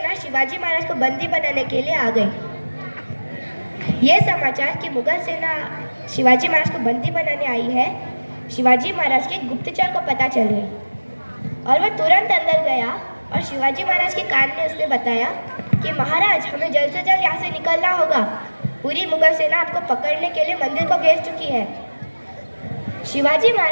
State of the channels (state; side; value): inverted; both; correlation -1.00